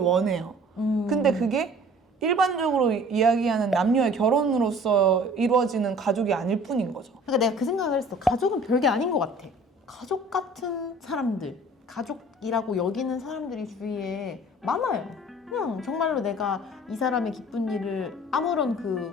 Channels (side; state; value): both; normal; correlation 0.49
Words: 근데 그게 일반적으로 이야기하는 남녀의 결혼으로서 이루어지는 가족이 아닐 뿐인 거죠. 그러니까 내가 그 생각을 했어. 가족은 별게 아닌 것 같아. 가족 같은 사람들, 가족이라고 여기는 사람들이 주위에 많아요. 그냥 정말로 내가 이 사람의 기쁜 일을 아무런